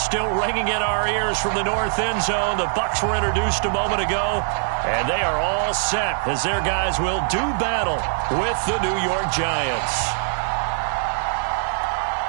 still ringing in our ears from the north end zone, the Bucs were introduced a moment ago, and they are all set as their guys will do battle with the New York Giants.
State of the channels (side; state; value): left; silent; digital silence